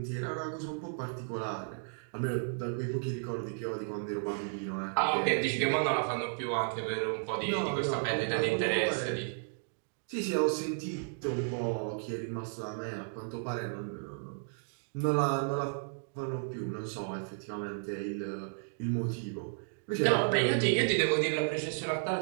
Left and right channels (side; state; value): left; silent; digital silence